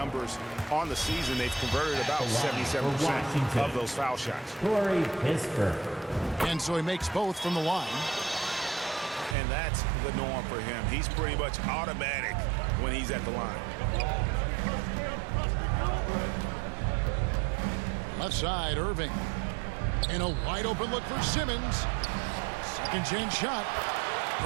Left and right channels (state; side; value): drops out; left; at 9.3 s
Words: on the season, they've converted about The line for 77% Washington. of those foul shots. Corey Kispert. And so he makes both from the line. And that's the norm for him. He's pretty much automatic when he's at the line. Left side, Irving. And a wide open look for Simmons. Second chance shot.